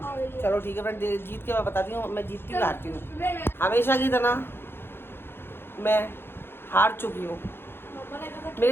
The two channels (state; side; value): late; right; 0.11 ms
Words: चलो ठीक है फ्रेंड, जीत के मैं बताती हूँ मैं जीतती हूँ हारती हूँ। हमेशा की तरह मैं हार चुकी हूँ।